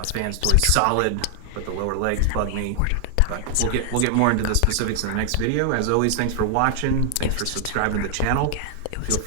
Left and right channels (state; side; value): different; both; correlation 0.00